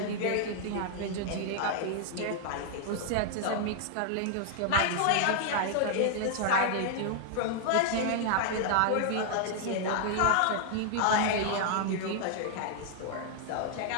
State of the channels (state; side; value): different; both; correlation 0.00